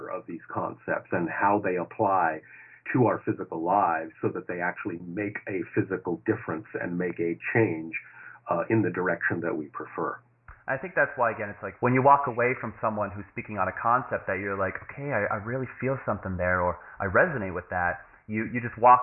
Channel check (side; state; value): both; identical; correlation 1.00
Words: of these concepts and how they apply to our physical lives so that they actually make a physical difference and make a change in the direction that we prefer. I think that's why, again, it's like when you walk away from someone who's speaking on a concept that you're like, okay, I really feel something there, or I resonate with that, you just